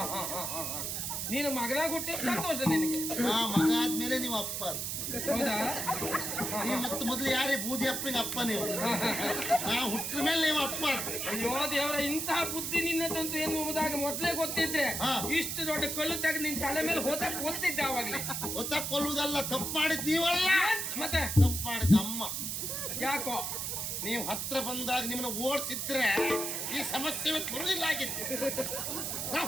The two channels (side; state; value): right; noise; hiss, 2 dB below the sound